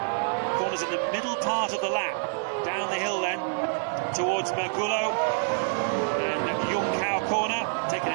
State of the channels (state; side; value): silent; left; digital silence